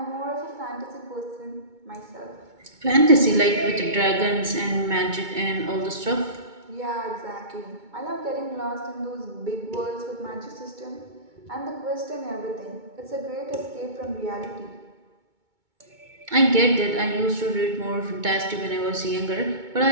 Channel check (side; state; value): left; late; 2.2 ms